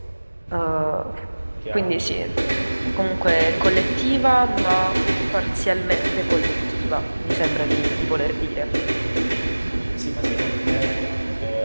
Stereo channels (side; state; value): both; inverted; correlation -1.00